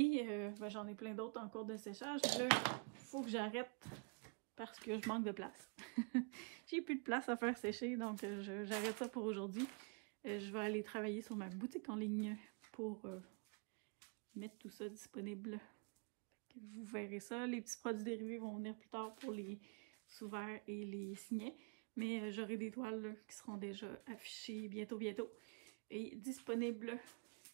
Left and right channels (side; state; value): left; quieter; 37.1 dB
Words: j'en ai plein d'autres en cours de séchage. Là, il faut que j'arrête parce que je manque de place. J'ai plus de place à faire sécher, donc j'arrête ça pour aujourd'hui. Je vais aller travailler sur ma boutique en ligne pour mettre tout ça disponible. Vous verrez ça. Les petits produits dérivés vont venir plus tard pour les sous-verts et les signets. Mais j'aurai des toiles là, qui seront déjà affichées bientôt et disponibles